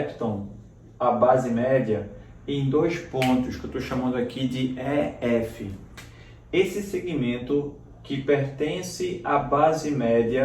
a base média em dois pontos que eu estou chamando aqui de EF. Esse segmento que pertence à base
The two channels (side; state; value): both; identical; correlation 1.00